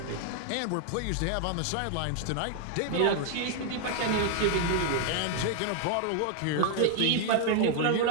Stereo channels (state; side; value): different; both; correlation 0.00